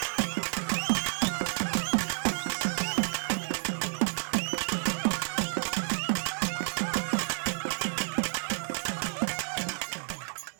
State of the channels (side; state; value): left; silent; digital silence